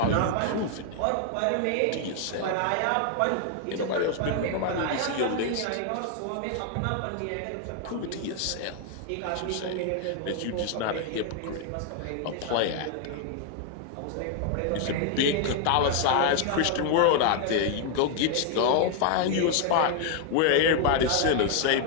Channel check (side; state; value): both; different; correlation 0.00